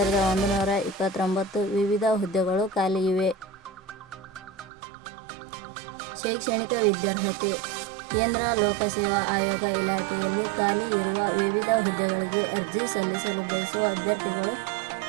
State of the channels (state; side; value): drops out; left; at 4.7 s